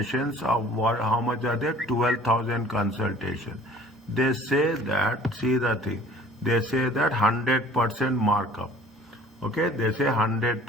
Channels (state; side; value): normal; both; correlation 0.51